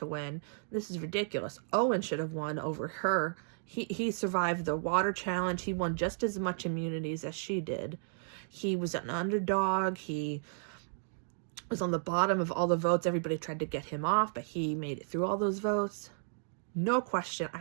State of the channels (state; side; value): silent; left; digital silence